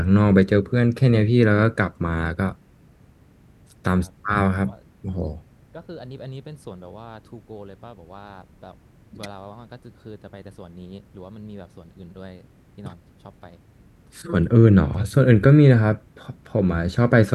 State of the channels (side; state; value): both; identical; correlation 1.00